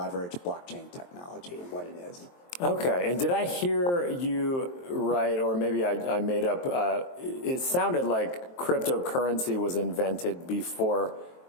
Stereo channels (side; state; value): right; late; 23 ms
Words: blockchain technology and what it is. Okay, and did I hear you right, or maybe I made up, it sounded like cryptocurrency was invented before